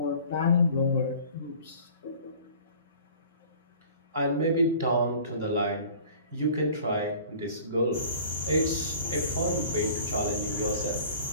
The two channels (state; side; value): inverted; both; correlation -0.47